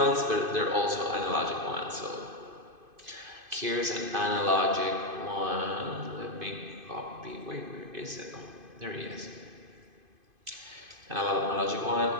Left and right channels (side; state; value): left; late; 2.5 ms